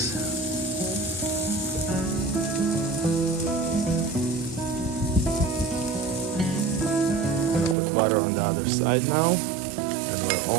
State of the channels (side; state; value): left; drops out; at 7.8 s